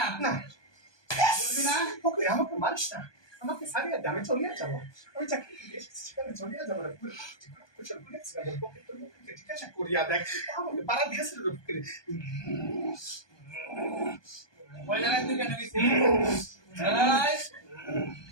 না বলবে না ওকে আমাকে মারিস না আমাকে সারিয়ে দে আমি চলিয়ে যাবো আমি চাকরি এসেছি সেখানে চলিয়ে যাবো না কুশল করেছি ওকে তোর মুখে জিজ্ঞাসা করিয়া দেখ আমাকে পাড়া দিয়েছিল রে বুকে ওই জায়গায় তুই কেন গেছিস এই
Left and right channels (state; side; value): late; right; 1.2 ms